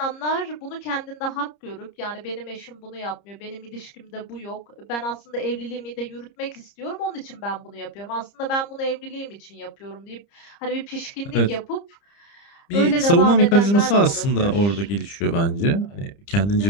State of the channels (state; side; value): late; right; 30 ms